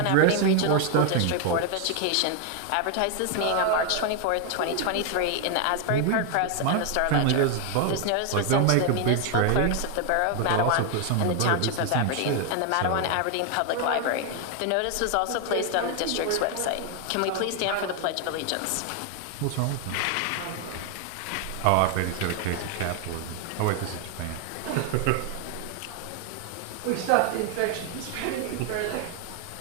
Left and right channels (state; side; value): different; both; correlation 0.00